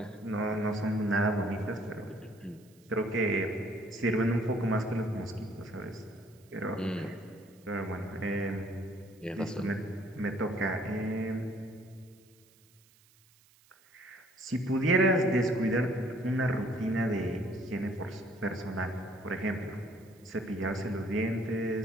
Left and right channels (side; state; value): right; noise; hiss, 30 dB below the sound